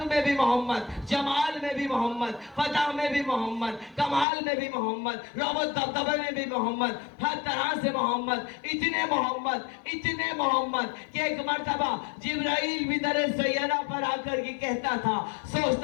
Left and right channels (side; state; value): right; drops out; at 4.2 s